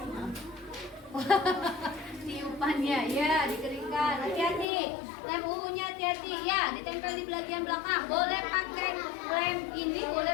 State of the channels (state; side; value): drops out; right; at 4.7 s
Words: Tiupannya ya dikeringkan. Hati-hati. Lem ungunya hati-hati ya, ditempel di bagian belakang. Boleh pakai lem ini,